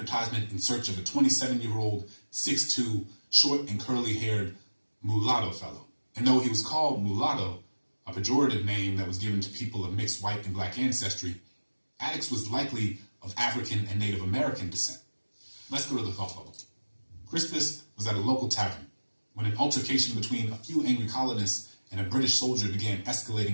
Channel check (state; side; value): inverted; both; correlation -1.00